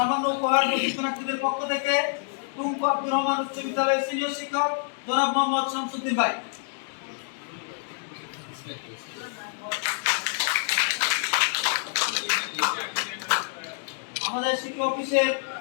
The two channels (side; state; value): right; silent; 60 dB below the other